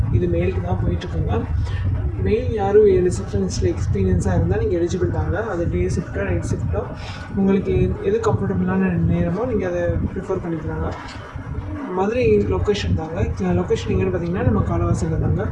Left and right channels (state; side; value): identical; both; correlation 1.00